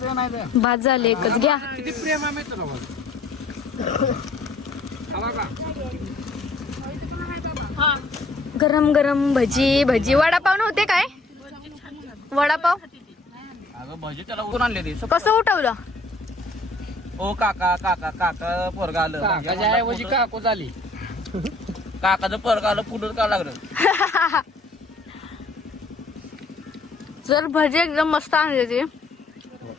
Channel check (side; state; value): right; quieter; 3.3 dB